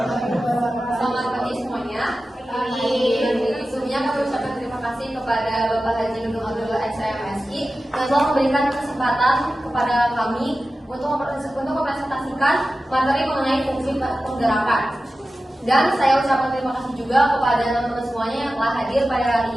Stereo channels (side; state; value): both; normal; correlation 0.94